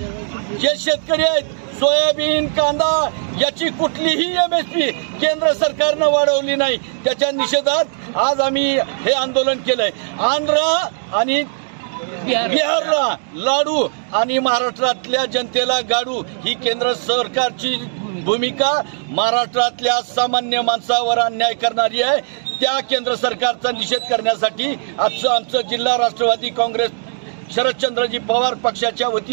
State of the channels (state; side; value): silent; left; digital silence